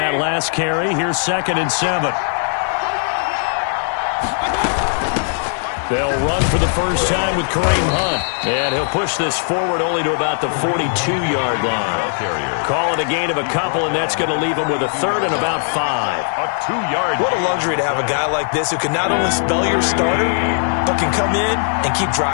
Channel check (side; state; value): right; silent; digital silence